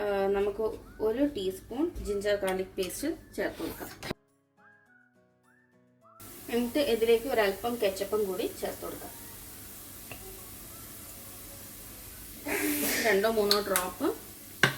നമുക്ക് 1 ടീസ്പൂൺ ജിഞ്ചർ ഗാർലിക് പേസ്റ്റ് ചേർത്ത് കൊടുക്കാം. എന്നിട്ട് ഇതിലേക്ക് ഒരല്പം കെച്ചപ്പും കൂടി ചേർത്ത് കൊടുക്കാം. 2-3 ഡ്രോപ്പ്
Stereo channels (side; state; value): both; identical; correlation 1.00